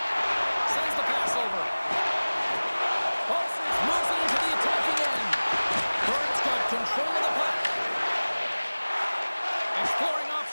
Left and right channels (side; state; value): both; inverted; correlation -1.00